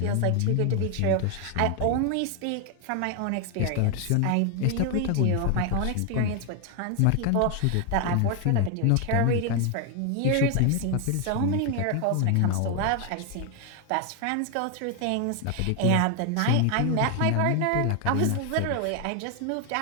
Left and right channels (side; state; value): both; different; correlation 0.01